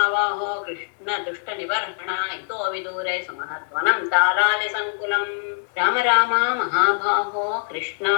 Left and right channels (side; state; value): right; silent; digital silence